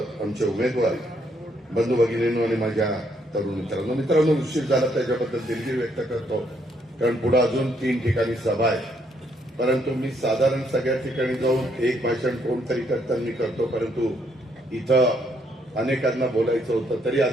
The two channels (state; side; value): normal; both; correlation 0.71